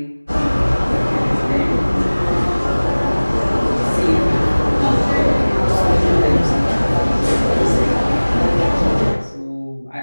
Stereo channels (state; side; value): inverted; both; correlation -1.00